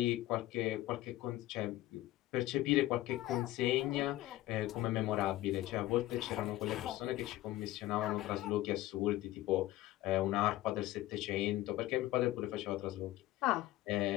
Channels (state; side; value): quieter; right; 15.8 dB